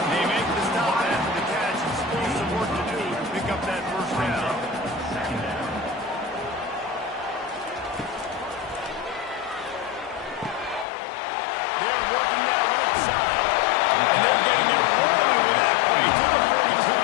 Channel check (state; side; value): drops out; right; at 10.9 s